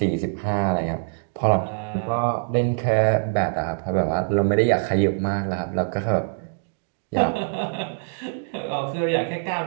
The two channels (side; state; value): left; silent; digital silence